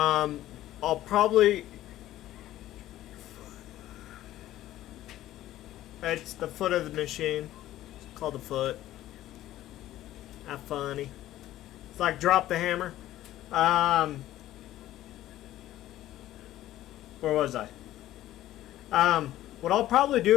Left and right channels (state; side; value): quieter; right; 14.2 dB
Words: probably... It's the foot of the machine. It's called the foot. Not funny. It's like drop the hammer. Where was I? What I'll probably